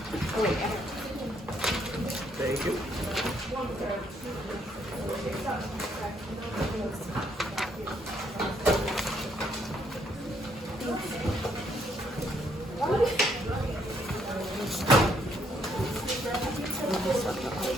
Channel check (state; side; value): normal; both; correlation 0.70